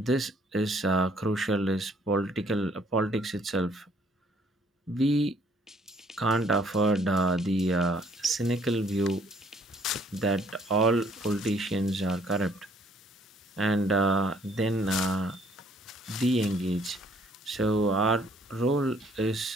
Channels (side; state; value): both; normal; correlation 0.63